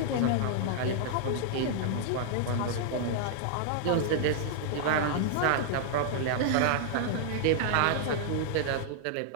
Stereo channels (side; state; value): both; different; correlation -0.01